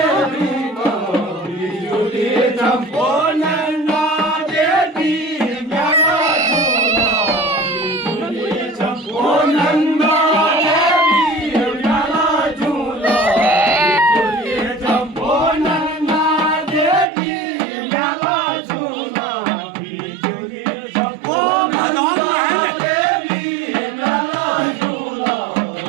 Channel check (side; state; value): left; drops out; at 17.1 s